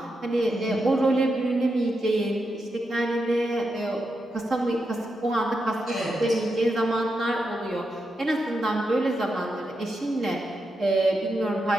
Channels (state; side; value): normal; both; correlation 0.86